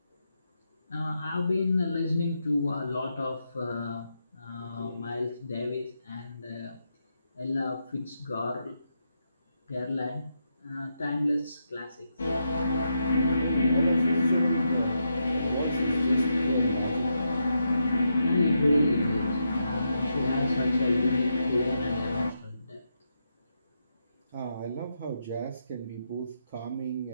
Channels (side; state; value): both; inverted; correlation -0.83